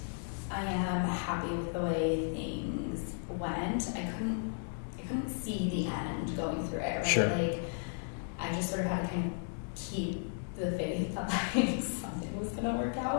I am happy with the way things went. I couldn't see the end going through it, right? Sure. Like, I just sort of had to kind of keep the faith that like something was gonna work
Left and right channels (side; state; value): right; silent; digital silence